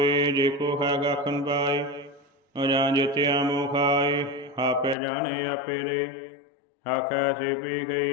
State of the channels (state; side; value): drops out; right; at 5.0 s